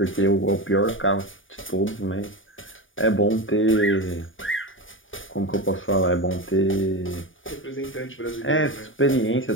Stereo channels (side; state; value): right; late; 0.57 ms